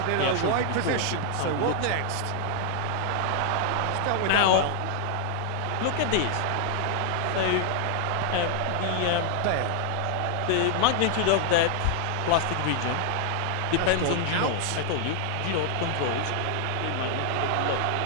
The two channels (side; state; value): both; different; correlation 0.00